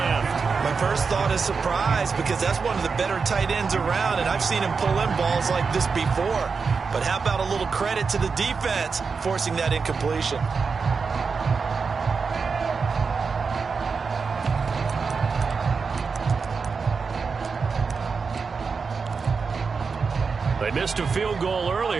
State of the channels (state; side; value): quieter; left; 5.1 dB